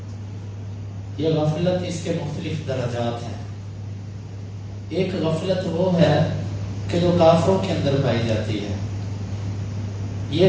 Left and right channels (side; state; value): both; identical; correlation 1.00